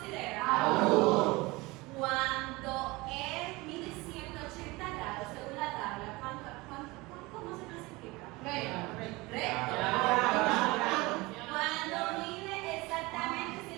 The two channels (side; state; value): left; quieter; 22.7 dB